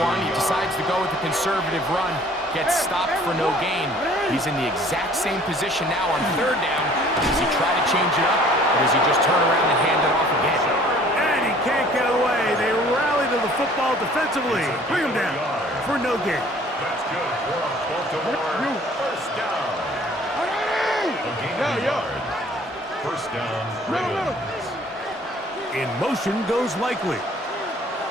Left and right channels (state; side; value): normal; both; correlation 0.54